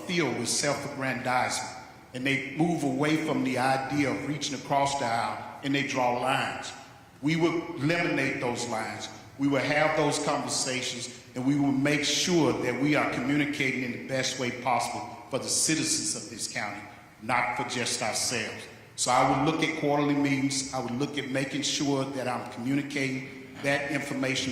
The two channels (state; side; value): identical; both; correlation 1.00